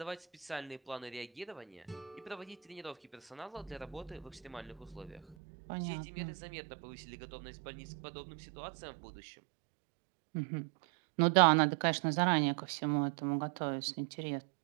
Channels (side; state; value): left; drops out; at 5.4 s